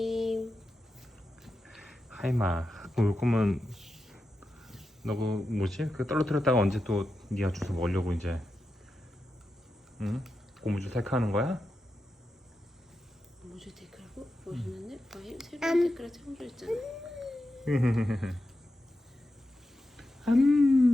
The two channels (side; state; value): both; normal; correlation 0.90